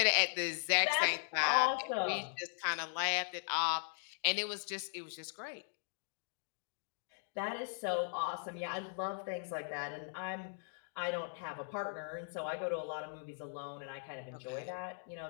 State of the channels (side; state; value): right; silent; digital silence